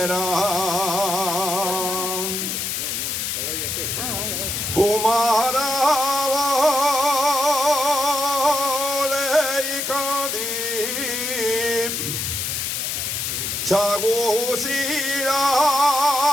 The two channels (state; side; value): noise; left; hiss, 2 dB below the sound